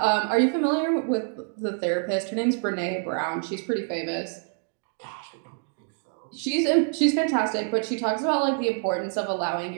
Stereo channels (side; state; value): left; silent; 58 dB below the other